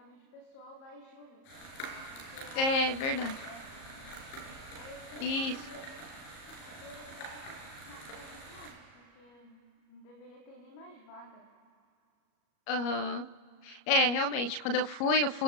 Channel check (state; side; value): late; right; 38 ms